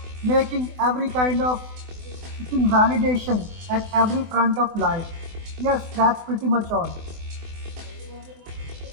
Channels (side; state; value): left; late; 24 ms